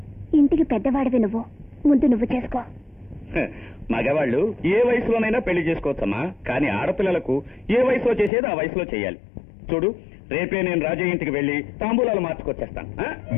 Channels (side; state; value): right; drops out; at 8.3 s